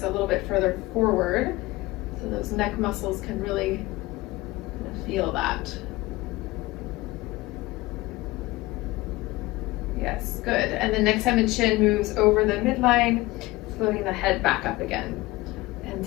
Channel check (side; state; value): right; quieter; 19.8 dB